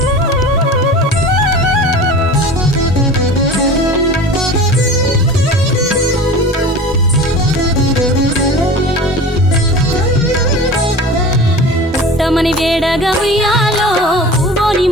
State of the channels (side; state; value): both; normal; correlation 0.37